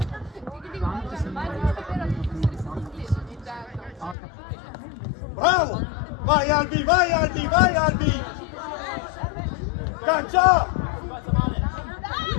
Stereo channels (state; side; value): drops out; right; at 4.2 s